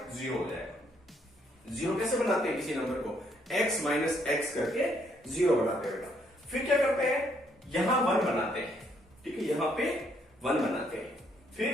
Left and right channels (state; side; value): normal; both; correlation 0.70